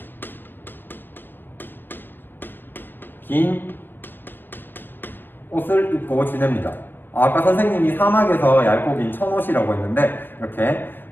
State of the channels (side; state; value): right; late; 0.097 ms